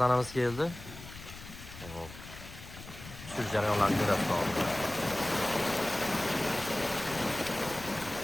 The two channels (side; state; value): left; noise; rumble, 15 dB below the sound